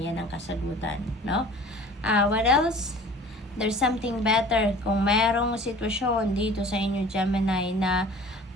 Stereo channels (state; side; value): normal; both; correlation 0.46